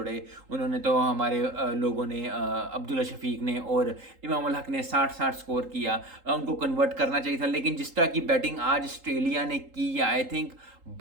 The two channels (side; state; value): left; late; 3.8 ms